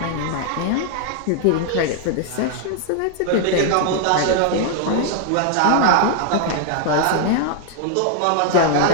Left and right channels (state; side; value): different; both; correlation 0.00